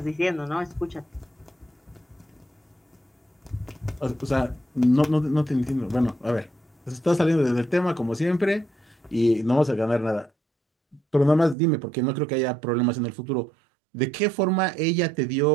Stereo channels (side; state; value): left; drops out; at 11.6 s